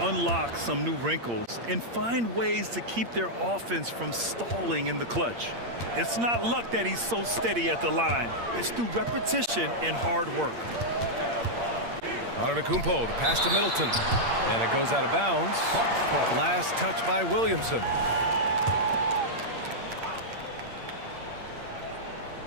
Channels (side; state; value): left; late; 8.6 ms